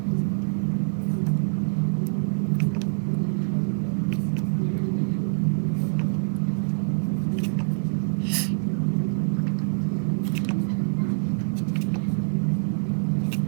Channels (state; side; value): silent; left; digital silence